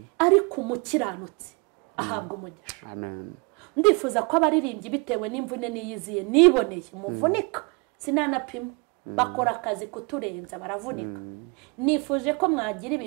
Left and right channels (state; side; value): quieter; left; 31.4 dB